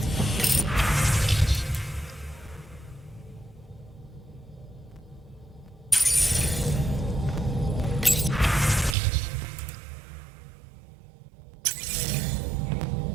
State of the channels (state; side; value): drops out; left; at 9.0 s